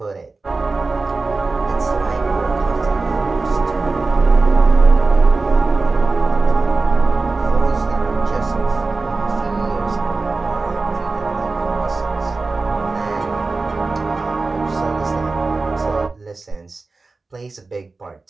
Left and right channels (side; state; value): left; quieter; 3.7 dB